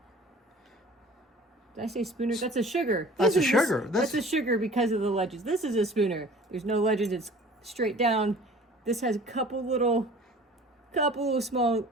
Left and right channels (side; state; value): both; normal; correlation 0.46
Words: I say spooner? That's a sugar. That's a sugar. That's a sugar because of the ledges. This is a spooner. There's no ledges. It's straight down. This has a couple little small